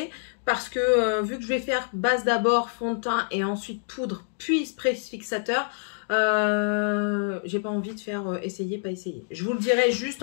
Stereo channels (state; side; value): silent; right; digital silence